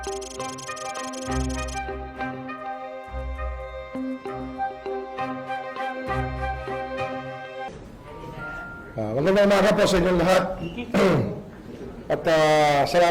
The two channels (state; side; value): identical; both; correlation 1.00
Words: umaga po sa inyong lahat. At